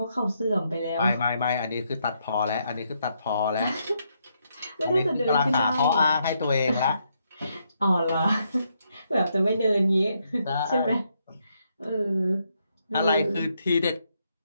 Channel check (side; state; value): both; inverted; correlation -0.77